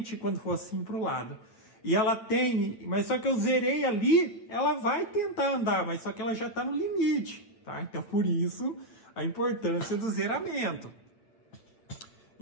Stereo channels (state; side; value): late; right; 8.9 ms